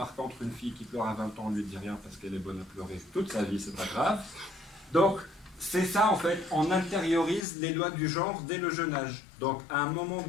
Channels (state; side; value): drops out; right; at 7.5 s